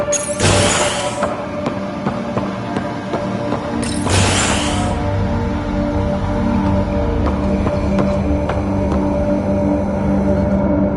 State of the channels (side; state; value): both; identical; correlation 1.00